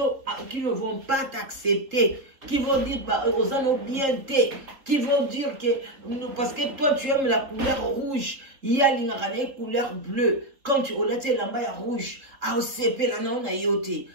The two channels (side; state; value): left; late; 3.5 ms